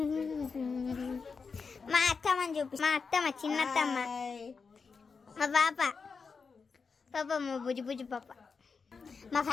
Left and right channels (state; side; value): quieter; right; 5.1 dB